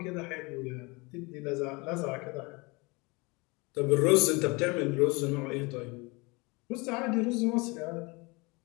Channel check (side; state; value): right; quieter; 26.7 dB